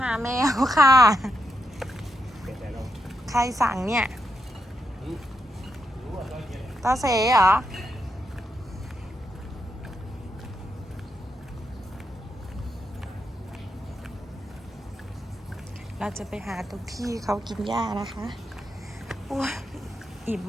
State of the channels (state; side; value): normal; both; correlation 0.83